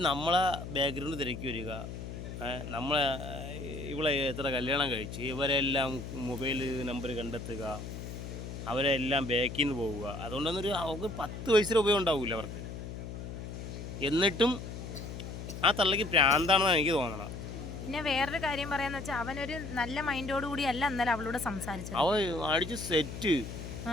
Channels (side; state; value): left; noise; hum, 8 dB below the sound